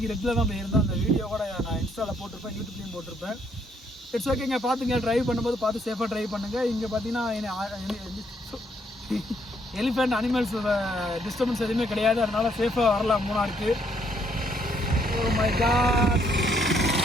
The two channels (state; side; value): normal; both; correlation 0.70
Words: ரெட்டில் தான் போயிருந்தோம். அந்த வீடியோ கூட நான் இன்ஸ்டாவில் போட்டிருப்பேன், யூடியூப்லேயும் போட்டிருப்பேன். இட்ஸ் ஓகேங்க, பார்த்துங்க. ட்ரைவ் பண்ணும்போது பார்த்து சேஃபாக ட்ரைவ் பண்ணுங்கள். இங்கே பார்த்தீங்கன்னா எலிஃபெண்ட் அனிமல்ஸ் டிஸ்டர்பன்ஸ் எதுவுமே கிடையாது, அதனால் சேஃபாக வரலாம் மூணாருக்கு. ஓ மை காட்,